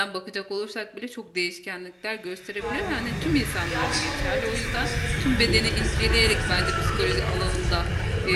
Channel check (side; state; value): both; identical; correlation 1.00